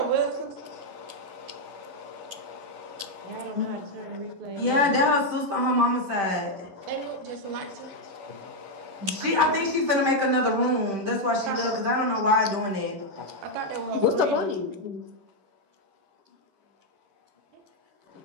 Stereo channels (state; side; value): late; left; 11 ms